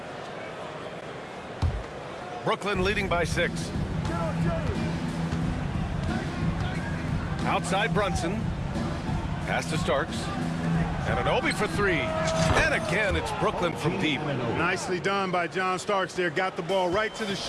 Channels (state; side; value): identical; both; correlation 1.00